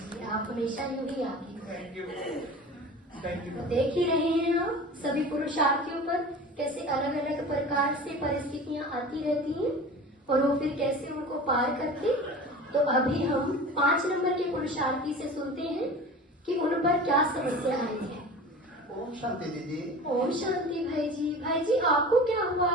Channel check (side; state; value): both; normal; correlation 0.36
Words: आप हमेशा यूं ही आगे। Thank you, thank you. देख ही रहे हैं आप सभी पुरुषार्थियों पर कैसे अलग अलग प्रकार से परिस्थितियां आती रहती हैं और वो फिर कैसे उनको पार करते। तो अभी हम 5 नंबर के पुरुषार्थी से सुनते हैं कि उन पर क्या समस्या आई है। ओम शांति दीदी। ओम शांति भाई जी। भाई जी, आपको क्या हुआ?